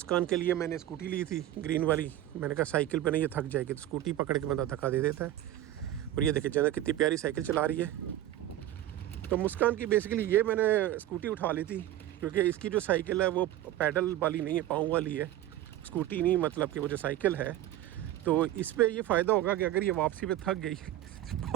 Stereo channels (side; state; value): left; quieter; 13.5 dB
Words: के लिए मैंने स्कूटी ली थी ग्रीन वाली। मैंने कहा साइकिल पे नहीं, ये थक जाएगी, तो स्कूटी पकड़ के बंदा धक्का दे देता है। और ये देखिए जन्नत कितनी प्यारी साइकिल चला रही है। तो मुस्कान की बेसिकली ये मैंने स्कूटी उठा ली थी क्योंकि इसकी जो साइकिल है वो पैडल वाली नहीं है, पाँव वाली है। स्कूटी नहीं, मतलब कि वो जो साइकिल है। तो इस पर ये फ़ायदा होगा कि अगर ये वापसी पे थक गई